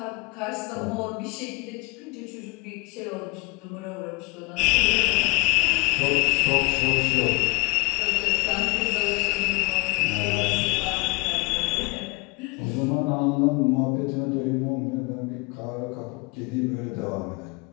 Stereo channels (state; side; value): quieter; right; 27.0 dB